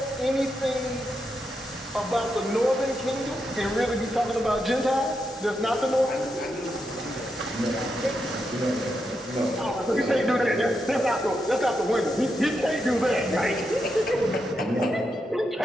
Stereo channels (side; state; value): both; normal; correlation 0.84